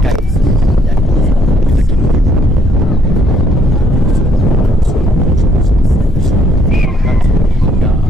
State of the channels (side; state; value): both; normal; correlation 0.68